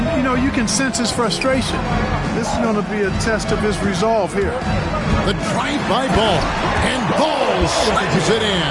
you can sense his frustration. This is going to be a test of his resolve here. The drive by Ball. And Ball slices it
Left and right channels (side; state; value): both; identical; correlation 1.00